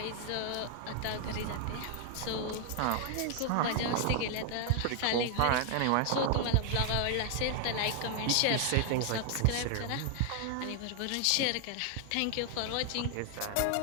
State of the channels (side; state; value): both; different; correlation 0.00